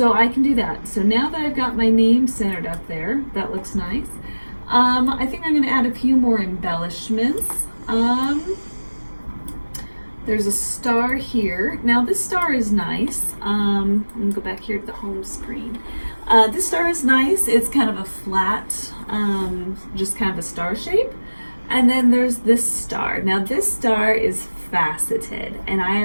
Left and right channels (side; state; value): both; inverted; correlation -1.00